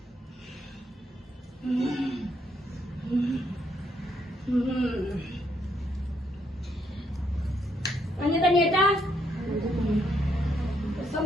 கொஞ்சம் தண்ணி எடுத்தா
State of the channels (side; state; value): both; normal; correlation 0.74